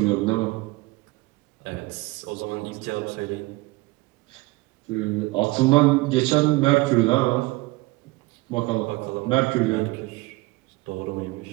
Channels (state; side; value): quieter; left; 22.4 dB